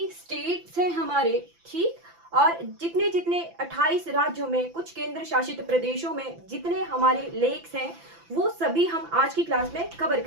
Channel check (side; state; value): left; late; 5.9 ms